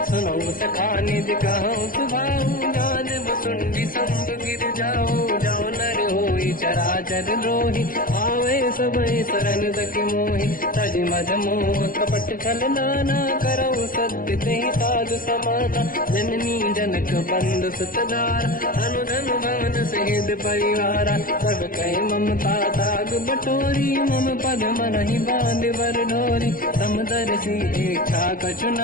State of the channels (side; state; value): right; late; 0.41 ms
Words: सुनो सखा निज कहूँ सुभाऊ, जान वसुंडी संग गिर जाओ, जाओ नर होई चराचर द्रोही, आवे सबई शरण सखि मोहि, तज मद मोह कपट छल नाना, करऊ सत्य तेहि साधु समाता, जननी जनक बंधु सुतधारा, अनुधन भवन सहित परिवारा, सब कहि ममता ताग बटोरी, मम पद मनहि बांध बर डोरी, समदर्शी इच्छा कछु